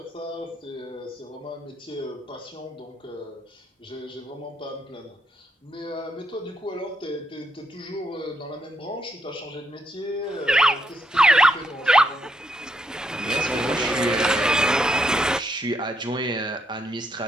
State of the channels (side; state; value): both; normal; correlation 0.77